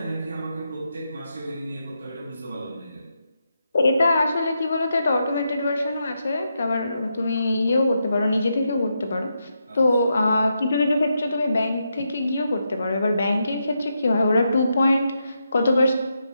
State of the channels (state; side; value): inverted; both; correlation -0.83